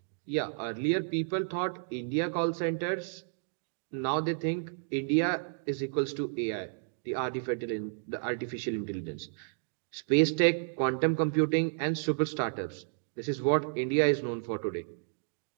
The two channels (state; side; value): silent; left; digital silence